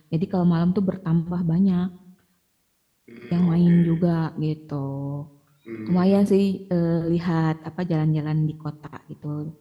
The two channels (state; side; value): identical; both; correlation 1.00